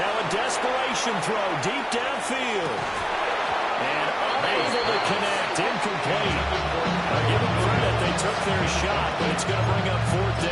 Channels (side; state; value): both; identical; correlation 1.00